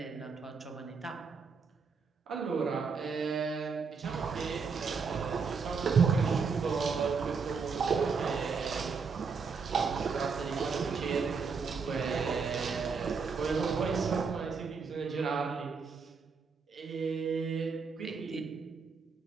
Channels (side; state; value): left; quieter; 5.3 dB